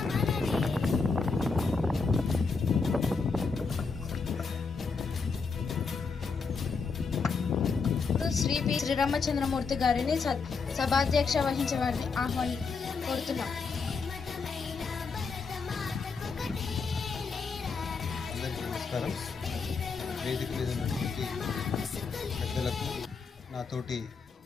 శ్రీ పి శ్రీరామచంద్రమూర్తి గారిని సభాధ్యక్ష వహించే వారిని కోరుతున్నాం. అందరికీ నమస్కారం. వేదిక మీద ఉన్నటువంటి పెద్దలకు, నాతోటి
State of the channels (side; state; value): right; quieter; 4.8 dB